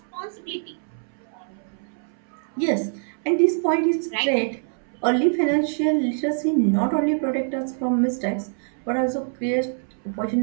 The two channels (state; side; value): silent; left; 62 dB below the other